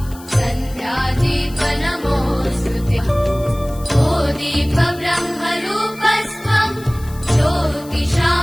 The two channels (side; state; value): left; noise; hiss, 20 dB below the sound